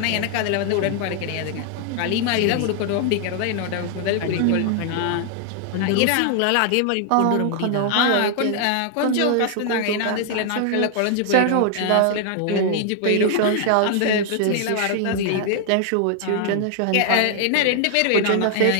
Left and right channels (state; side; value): different; both; correlation 0.00